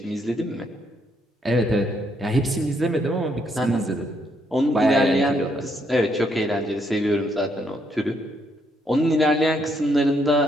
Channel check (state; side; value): normal; both; correlation 0.74